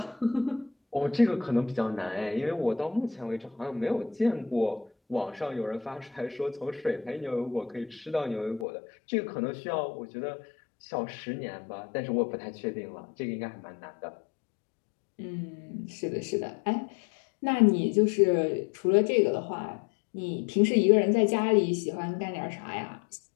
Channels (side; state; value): right; drops out; at 8.7 s